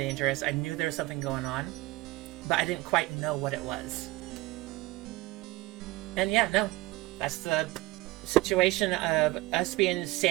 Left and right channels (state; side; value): quieter; left; 20.1 dB